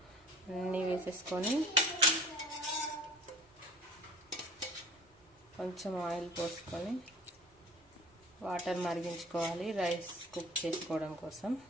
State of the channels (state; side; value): normal; both; correlation 0.46